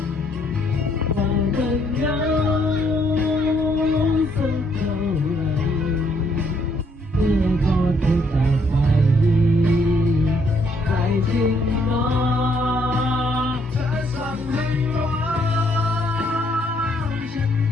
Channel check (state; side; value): normal; both; correlation 0.69